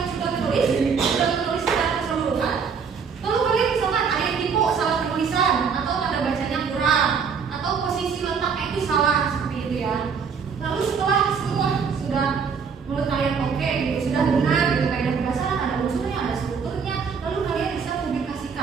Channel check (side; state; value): left; quieter; 6.1 dB